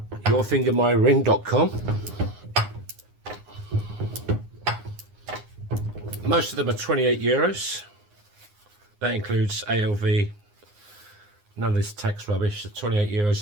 yourfingermyring.com. Most of them are 28 euros. That includes ALV. None of this tax rubbish. So 28 euros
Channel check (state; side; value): late; left; 9.7 ms